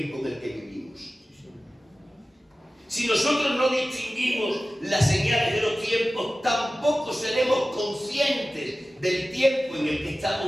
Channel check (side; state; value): both; normal; correlation 0.96